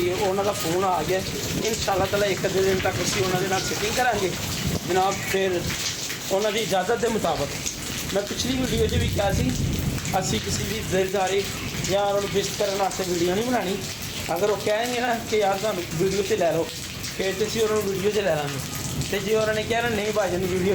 है, उन्होंने फोन आ गया। इंशाअल्लाह ताला एक अद्धे दिन तक असी उन्होंने फिटिंग करांगे जनाब। फिर उन्होंने इजाज़त के मुताबिक मैं पिछली वीडियो भी कहा सी असी किसी की दिलदारी या उन्होंने विश करने वास्ते वीडियो नहीं बनानी। अगर वो कहेंगे ना कि यार तुम वीडियो से लै लो, फिर तो असी उन्होंने वीडियो से लै लेंगे। तो जो उन्होंने कहना नहीं भाई जी वीडियो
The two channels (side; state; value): both; identical; correlation 1.00